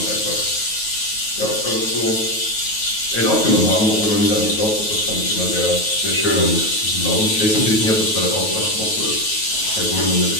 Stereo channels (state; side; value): late; right; 9.3 ms